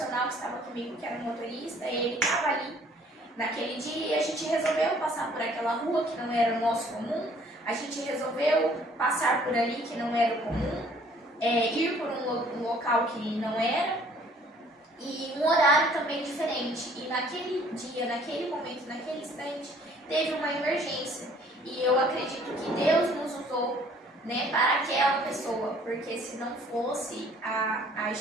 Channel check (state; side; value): normal; both; correlation 0.58